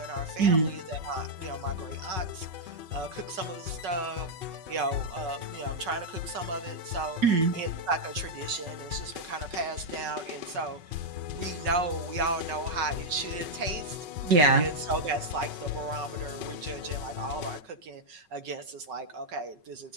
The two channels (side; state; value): left; late; 5.4 ms